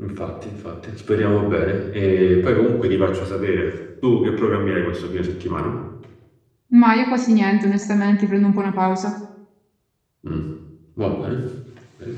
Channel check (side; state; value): both; identical; correlation 1.00